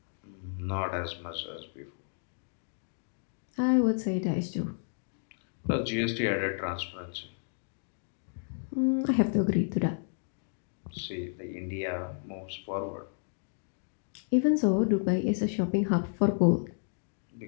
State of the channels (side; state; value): right; silent; digital silence